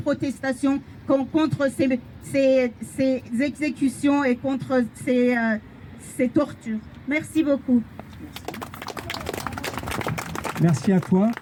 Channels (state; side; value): identical; both; correlation 1.00